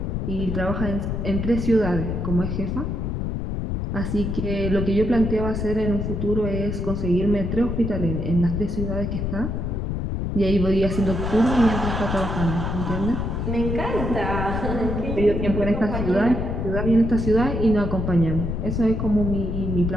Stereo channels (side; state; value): left; noise; rumble, 2 dB below the sound